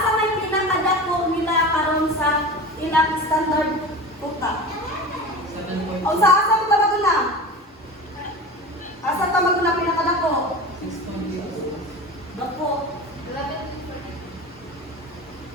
may pinakadako nila karon sa ilang standard quota? 7.2. O sa asa mo tawag na? Asa tawag na pinakadako? 6.2. Dako.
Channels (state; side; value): normal; both; correlation 0.31